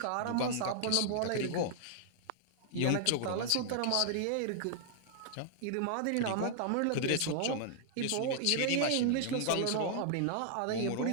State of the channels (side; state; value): both; different; correlation -0.01